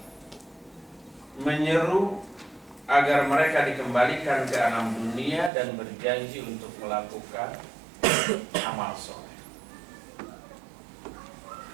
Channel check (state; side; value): drops out; left; at 5.5 s